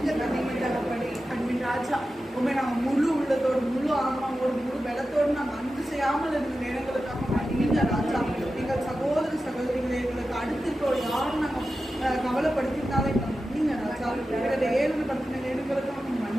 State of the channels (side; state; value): both; normal; correlation 0.92